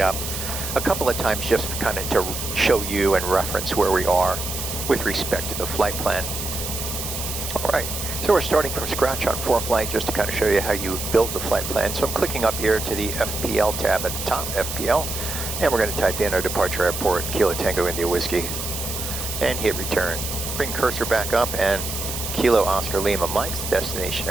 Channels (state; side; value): noise; right; hiss, 5 dB below the sound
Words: up a couple of times just kind of to show you and reference where we are with respect to the flight plan. All right. So we're starting from scratch on ForeFlight just to kind of show you how you build the flight plan. So I'm clicking up here to the FPL tab at the top, FPL, and we're going to type in our departure airport, Kilo Tango India Whiskey, and hit return. Bring cursor back up and Kilo Oscar Lima Mike's destination